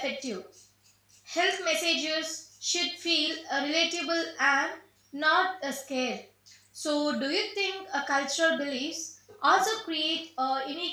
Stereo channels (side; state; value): both; identical; correlation 1.00